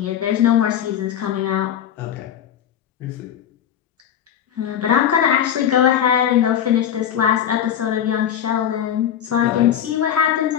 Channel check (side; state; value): right; quieter; 9.7 dB